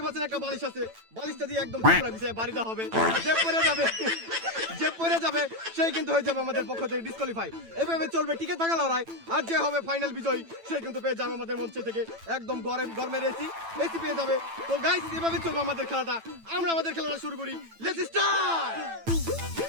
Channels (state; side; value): late; left; 9.0 ms